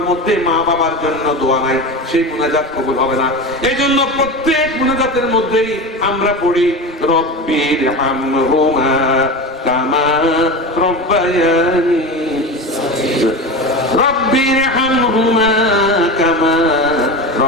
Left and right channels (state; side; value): normal; both; correlation 0.25